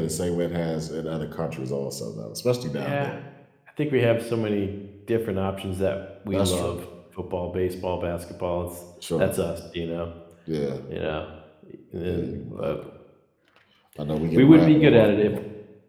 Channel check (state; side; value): identical; both; correlation 1.00